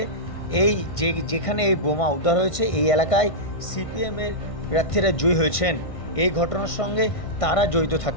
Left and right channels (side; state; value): right; late; 1.6 ms